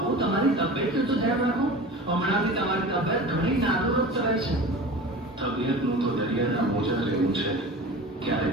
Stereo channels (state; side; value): normal; both; correlation 0.36